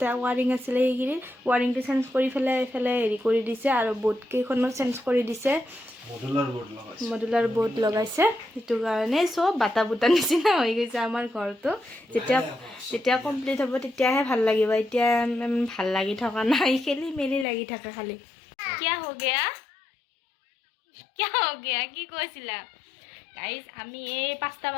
ৱাৰিং আছিলে সেইখিনিত ৱাৰিংটো চেঞ্জ কৰি পেলাই এইফালে হেৰি কৰি দিছে আৰু বোৰ্ড কেইখনো চেঞ্জ কৰি দিছে মডুলাৰ বোৰ্ড লগাইছে সেইটো কাৰণে চব বাটা বুটা নিচিনা হৈ গৈছে আমাৰ ঘৰটো যেতিয়া কমপ্লিট হ'ব তেতিয়াহে ভাল লাগিব এতিয়া ভাল লাগি থকা নাই খেলি মেলি লাগি থাকে খালি কিয় হৈ গয়া কি কৈছিলা গাইজ আমি এই 5টা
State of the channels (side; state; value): right; drops out; at 17.4 s